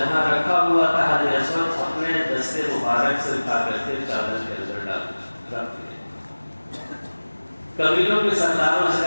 رکھا ہوا تھا حجر اسود اپنے دستے مبارک سے اٹھا کر کے چادر کے اندر ڈال رکھ دیا۔ قبیلوں کے سرداروں سے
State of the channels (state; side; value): inverted; both; correlation -1.00